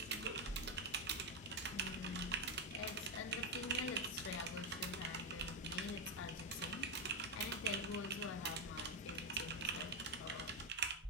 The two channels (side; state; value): both; normal; correlation 0.05